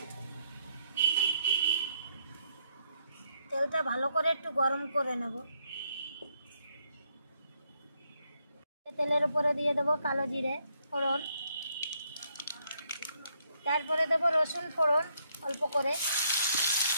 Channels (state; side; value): inverted; both; correlation -0.74